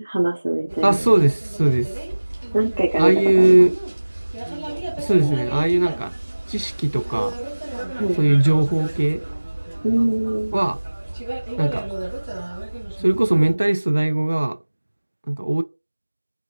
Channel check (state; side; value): inverted; both; correlation -1.00